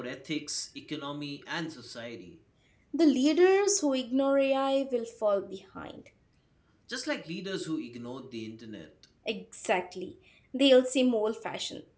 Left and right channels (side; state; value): both; identical; correlation 1.00